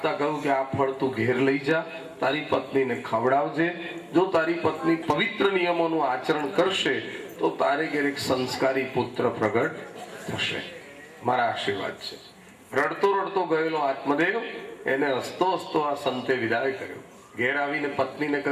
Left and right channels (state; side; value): identical; both; correlation 1.00